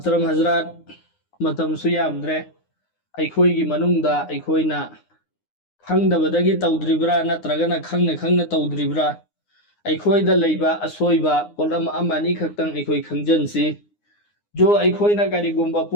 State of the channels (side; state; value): right; late; 9.7 ms